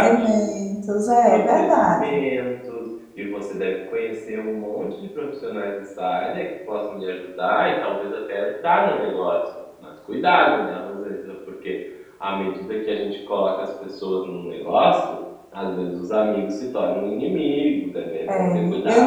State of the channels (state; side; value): identical; both; correlation 1.00